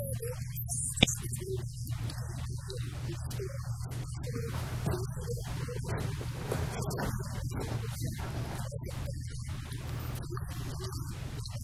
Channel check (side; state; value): both; identical; correlation 1.00